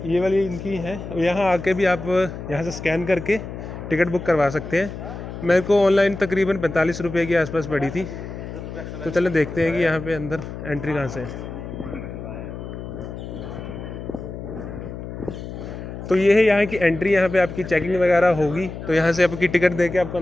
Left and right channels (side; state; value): left; noise; hum, 9 dB below the sound